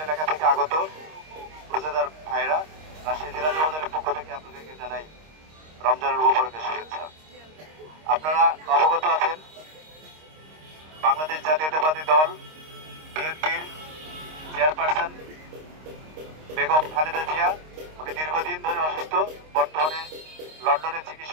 এলাকা থেকে আগত রোজাদার ভাইরা, রাজশাহী জেলা যুবদলের পক্ষ থেকে আপনাদেরকে জানাই রমজানুল মুবারকের শুভেচ্ছা। আপনারা অবগত আছেন, বাংলাদেশ জাতীয়তাবাদী দল বিএনপির চেয়ারপারসন বেগম খালেদা জিয়া, উনি দীর্ঘদিন ধরে অসুস্থ, বর্তমানে লন্ডনে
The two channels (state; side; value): late; left; 26 ms